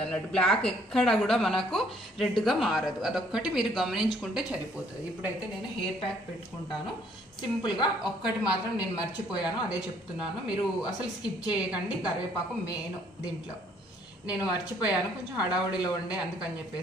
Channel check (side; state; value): both; normal; correlation 0.63